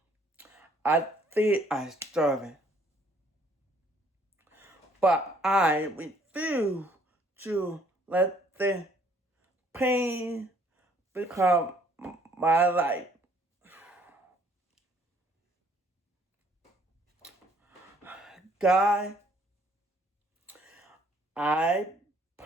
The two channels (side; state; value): both; normal; correlation 0.62